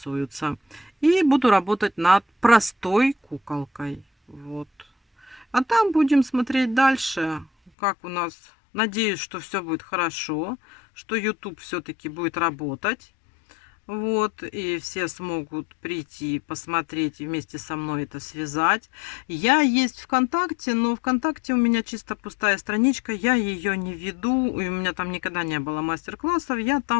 И буду работать над простой куколкой. Вот. А там будем смотреть дальше, как у нас. Надеюсь, что все будет хорошо, что YouTube все-таки будет работать. Вот, и все смогут прийти, посмотреть и вместе со мной это связать. Я есть ВКонтакте, но ВКонтакте у меня чисто пустая страничка, я ее не веду, и у меня там никогда не было мастер-классов, я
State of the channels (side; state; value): right; drops out; at 7.7 s